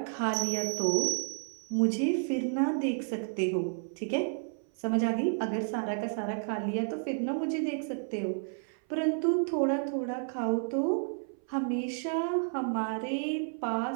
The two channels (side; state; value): left; silent; 57 dB below the other